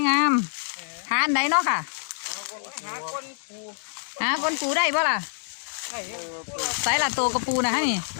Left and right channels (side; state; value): right; silent; digital silence